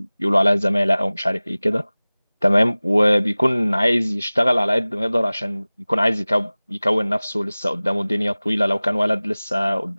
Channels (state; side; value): inverted; both; correlation -0.99